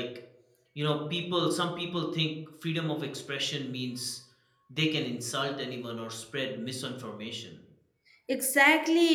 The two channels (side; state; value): both; identical; correlation 1.00